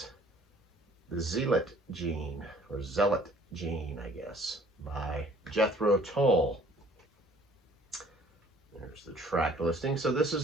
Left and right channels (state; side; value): normal; both; correlation 0.55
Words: the Zealot Gene, or Zealot Gene, I guess, by Jethro Tull. There's the track listing. So this